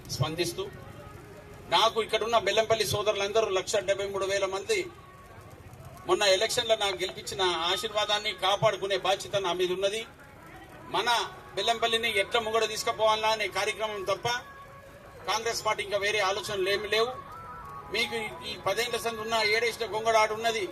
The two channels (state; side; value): identical; both; correlation 1.00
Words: స్పందిస్తూ, నాకు ఇక్కడున్న బెల్లంపల్లి సోదరులందరూ 1,73,000 మంది మొన్న ఎలక్షన్లో నాకు గెలిపించిన ఆశీర్వాదాన్ని కాపాడుకునే బాధ్యత నా మీద ఉన్నది. మన బెల్లంపల్లిని ఎట్లా ముంగడ తీసుకుపోవాలా అనే కార్యక్రమం తప్ప కాంగ్రెస్ పార్టీ ఇంకా వేరే ఆలోచనలు ఏమి లేవు. మీకు ఈ 10 ఏళ్ల సంది ఉన్న ఏడేసిన గొంగడాడు ఉన్నది,